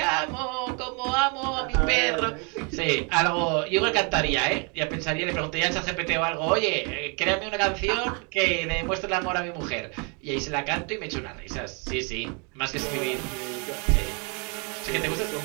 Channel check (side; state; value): left; quieter; 34.2 dB